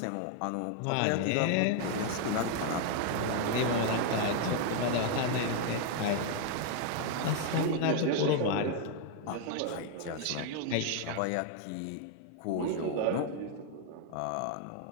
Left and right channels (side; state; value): both; different; correlation 0.00